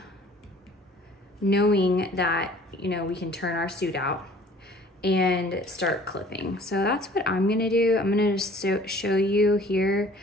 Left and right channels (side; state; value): both; normal; correlation 0.51